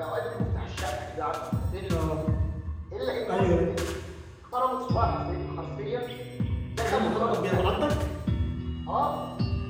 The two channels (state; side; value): identical; both; correlation 1.00